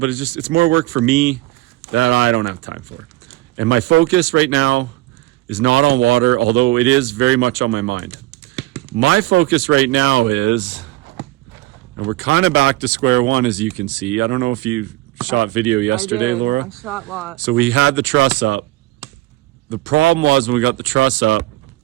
but it's more work for me that I don't have time for. And my focus right now is not on water, although it is very much on my mind. My focus right now is, and we're kind of back to square one, as you can see. I don't know if you shot video yesterday, Laura. I shot lots. So we had the truss up. The problem was when we got the truss up,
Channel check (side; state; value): left; quieter; 18.5 dB